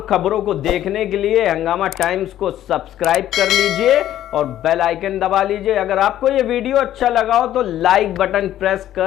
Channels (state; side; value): quieter; right; 12.3 dB